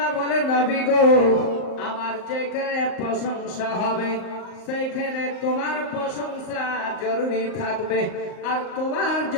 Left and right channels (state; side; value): late; right; 38 ms